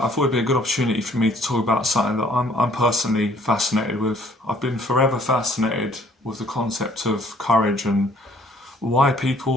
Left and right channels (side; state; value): both; normal; correlation 0.60